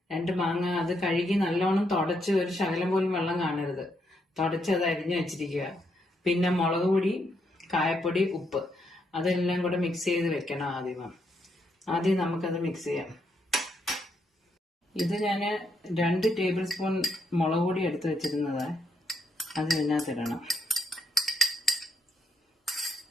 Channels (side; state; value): both; normal; correlation 0.77